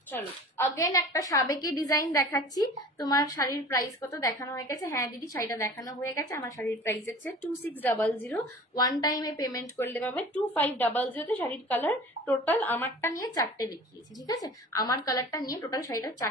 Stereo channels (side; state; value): both; normal; correlation 0.42